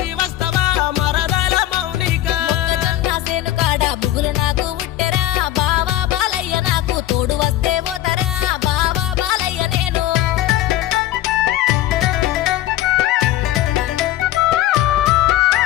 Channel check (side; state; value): right; quieter; 13.8 dB